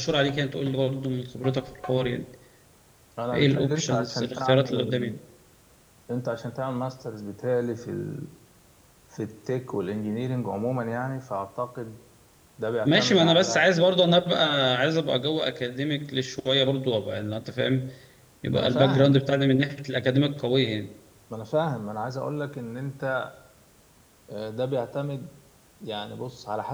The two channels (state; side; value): identical; both; correlation 1.00